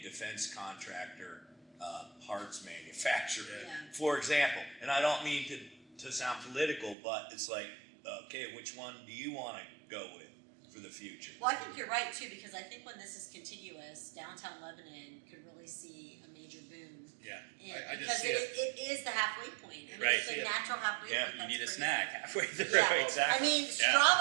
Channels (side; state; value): left; drops out; at 7.0 s